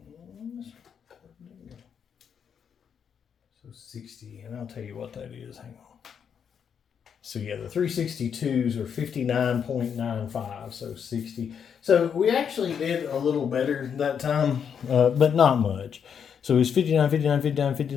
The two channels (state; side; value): quieter; right; 7.5 dB